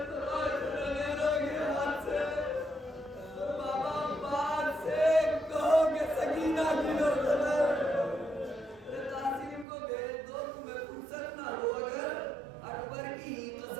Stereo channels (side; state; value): left; drops out; at 9.7 s